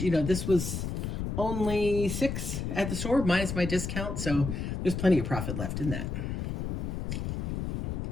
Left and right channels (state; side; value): noise; left; rumble, 3 dB below the sound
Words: this was only $6 at the store minus my discount. So there's plenty of profit left in that.